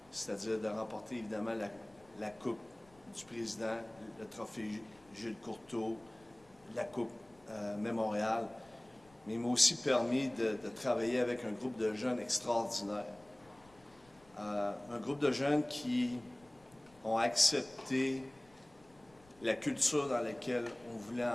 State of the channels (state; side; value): noise; left; rumble, 28 dB below the sound